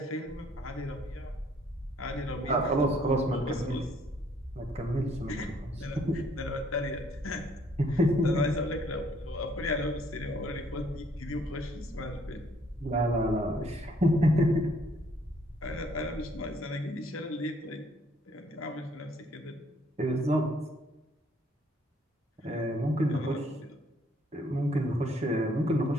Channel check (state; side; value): normal; both; correlation 0.65